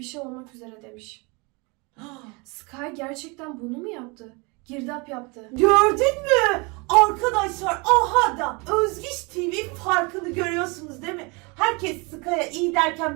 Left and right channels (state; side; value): quieter; left; 29.2 dB